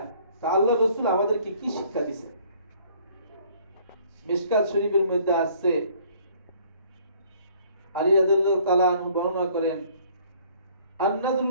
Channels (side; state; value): both; inverted; correlation -0.58